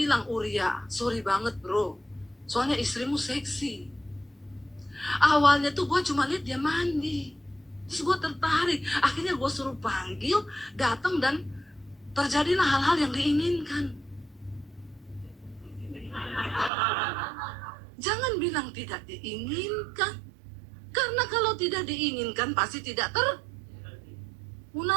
Uria, sorry banget bro, soalnya istrimu seksi. Awalnya tuh gue cuma lihat dia mandi, terus gue tertarik. Akhirnya gue suruh panggil, datang dan terjadilah hal-hal yang diinginkan. Jangan bilang tidak diinginkan. Karena kalau tidak diinginkan pasti tidak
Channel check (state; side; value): drops out; left; at 16.7 s